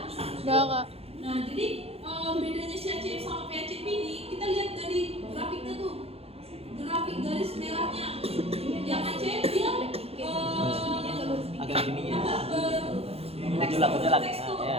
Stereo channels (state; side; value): late; left; 0.29 ms